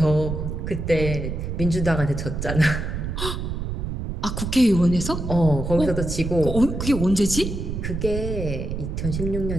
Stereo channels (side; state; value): right; noise; rumble, 4 dB below the sound